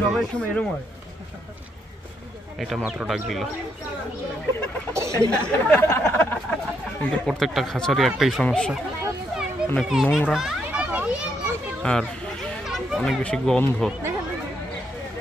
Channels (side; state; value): both; normal; correlation 0.76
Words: এটা মাত্র ডাক দিল। কিন্তু প্রত্যেকটা খাঁচারই একটাই সমস্যা, অনেক নোংরা আর অনেক বেশি গন্ধ।